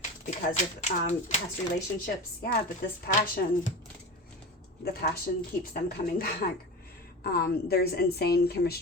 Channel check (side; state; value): both; normal; correlation 0.29